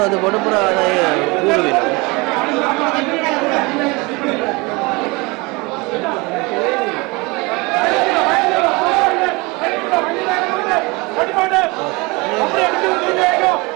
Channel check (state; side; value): quieter; left; 25.7 dB